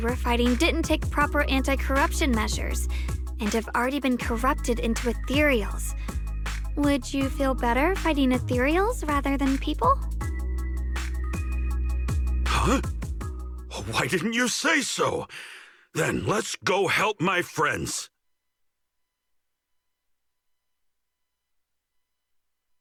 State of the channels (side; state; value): both; identical; correlation 1.00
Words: were fighting didn't take proper anti-corruption measures and have already been corrupted into ethereals. Would you feel better fighting ethereals rather than people? Huh? Why didn't you say so? Then let's go help my friends.